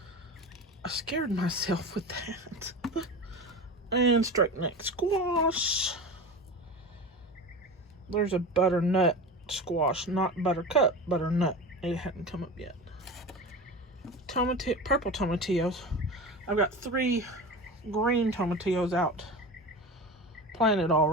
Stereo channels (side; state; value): both; normal; correlation 0.29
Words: I scared myself with that. And straight neck squash. There's a butternut squash, not buttercup, butternut It hadn't come up yet. Purple tomatillos. I've got 3 green tomatillos out planted